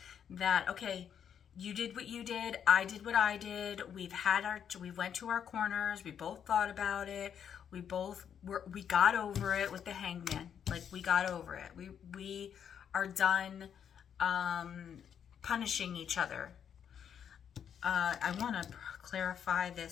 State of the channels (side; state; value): right; quieter; 8.4 dB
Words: that, okay, you did what you did, I did what I did. We went to our corners. We both thought about it. We got over it with the Hangman. Like, we got over it. We are done punishing each other. I want to clarify